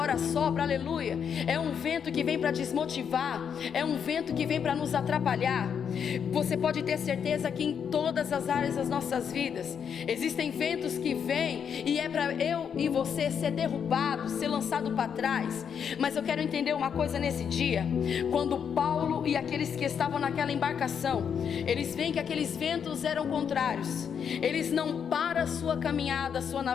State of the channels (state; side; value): quieter; right; 7.5 dB